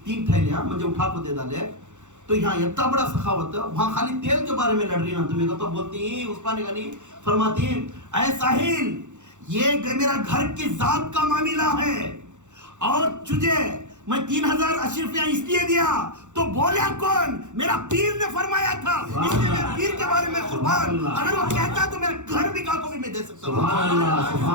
3 تھیلیاں مجھے اٹھا کو دے ڈالے. تو یہاں اتنا بڑا سخاوت ہے, وہاں خالی تیل کے بارے میں لڑ رہی نا تمہیں کو. تو بولتی ہیں عثمان غنی فرماتی ہیں, اے ساحل یہ میرا گھر کی ذات کا معاملہ ہے, اور تجھے میں 3000 اشرفیاں اس لیے دیا تو بولیا کون؟ میرا پیر نے فرمایا تھا, اس لیے میں پیر کے بارے میں قربان. اگر وہ کہتا تو میرا گھر بھی کا کو بھی میں دے سکتا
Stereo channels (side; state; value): left; late; 0.85 ms